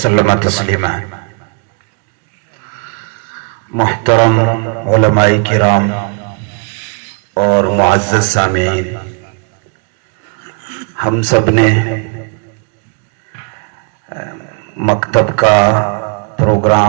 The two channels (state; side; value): quieter; left; 38.0 dB